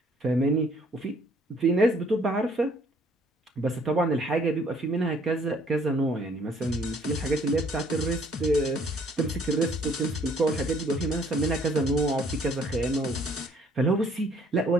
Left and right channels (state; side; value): normal; both; correlation 0.61